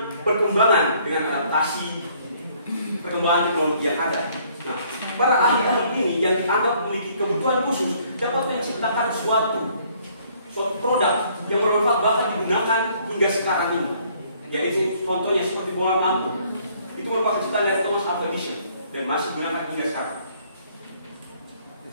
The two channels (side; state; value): both; inverted; correlation -0.63